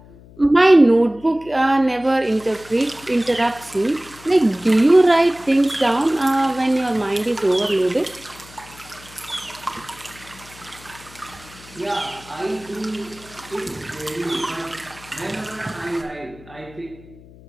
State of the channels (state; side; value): noise; left; hum, 22 dB below the sound